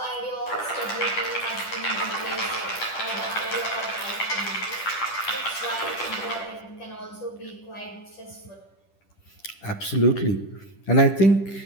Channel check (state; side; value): late; right; 10 ms